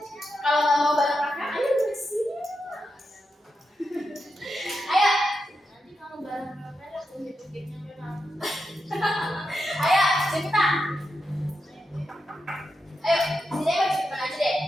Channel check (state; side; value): normal; both; correlation 0.87